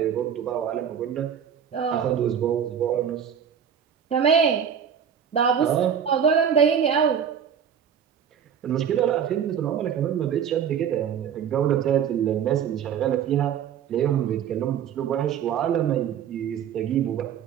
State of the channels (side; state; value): left; quieter; 8.3 dB